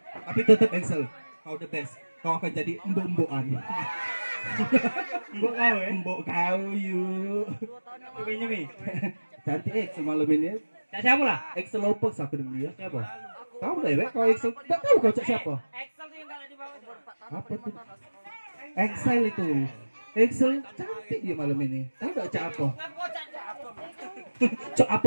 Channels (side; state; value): both; inverted; correlation -1.00